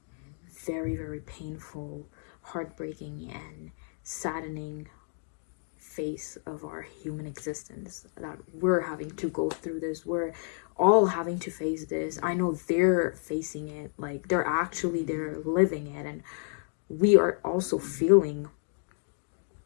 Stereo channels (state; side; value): silent; right; digital silence